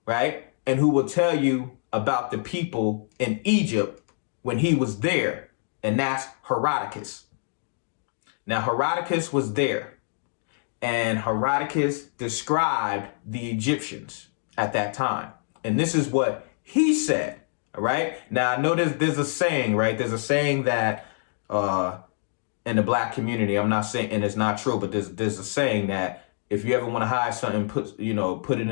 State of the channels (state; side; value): silent; right; digital silence